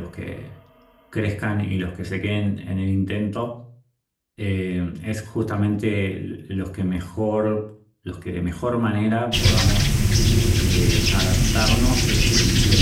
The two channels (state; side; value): identical; both; correlation 1.00